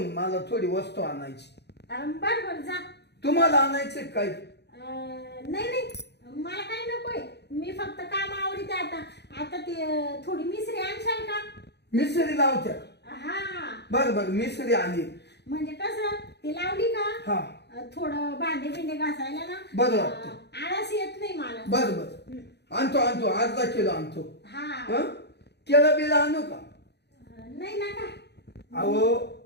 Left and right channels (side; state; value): right; late; 0.49 ms